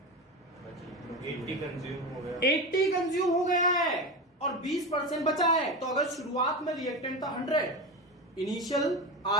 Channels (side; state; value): both; normal; correlation 0.22